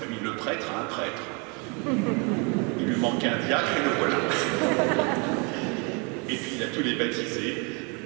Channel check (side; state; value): left; quieter; 33.1 dB